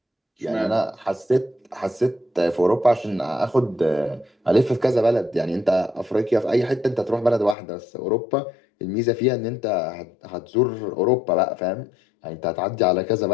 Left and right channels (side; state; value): right; drops out; at 7.6 s